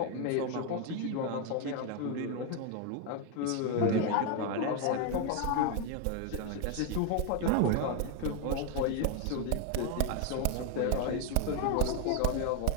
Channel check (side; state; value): both; different; correlation 0.01